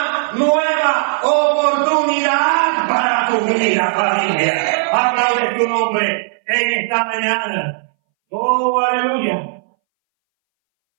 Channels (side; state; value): left; silent; 64 dB below the other